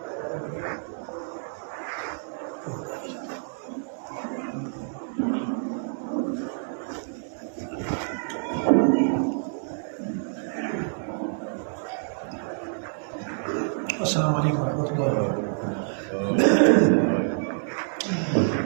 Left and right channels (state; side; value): silent; left; digital silence